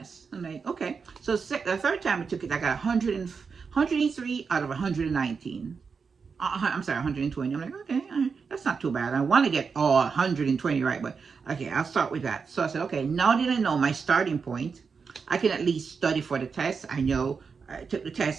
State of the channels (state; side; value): quieter; left; 5.5 dB